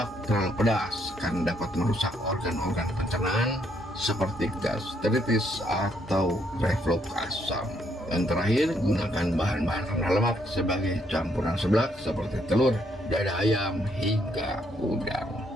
terlalu pedas karena dapat merusak organ-organ pencernaan seperti gastritis atau reflux asam. Dan terakhir, gunakan bahan-bahan rendah lemak sebagai campuran seblak seperti telur, dada ayam, hingga udang.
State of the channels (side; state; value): both; normal; correlation 0.72